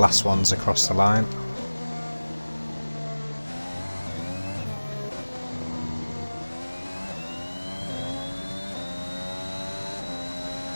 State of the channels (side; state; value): both; inverted; correlation -1.00